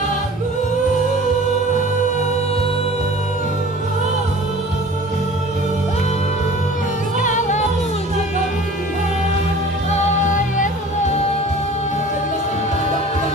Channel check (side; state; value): both; normal; correlation 0.44